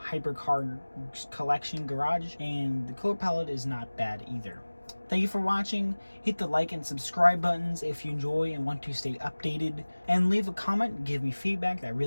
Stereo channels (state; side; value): inverted; both; correlation -1.00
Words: hypercar collection garage, and the color palette is not bad either. Thank you for watching. Hit the like and subscribe buttons if you enjoy and want to stay updated, and leave a comment, give me feedback. That